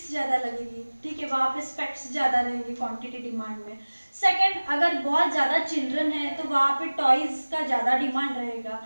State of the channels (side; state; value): both; inverted; correlation -1.00